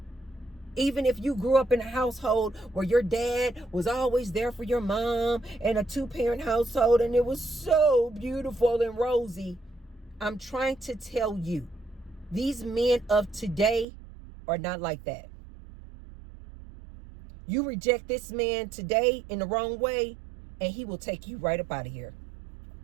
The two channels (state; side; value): drops out; left; at 13.9 s